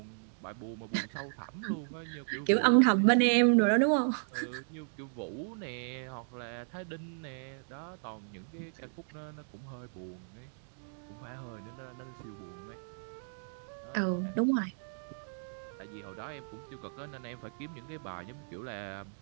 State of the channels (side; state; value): left; silent; digital silence